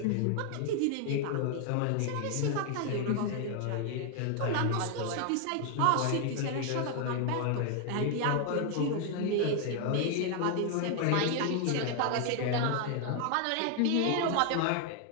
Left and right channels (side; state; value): both; different; correlation 0.00